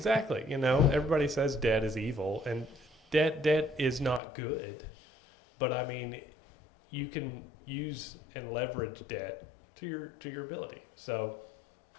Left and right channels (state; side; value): drops out; right; at 4.2 s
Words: You know, everybody says debt is evil, and debt is not good. But I mean, you can use and leverage debt to your ability. So,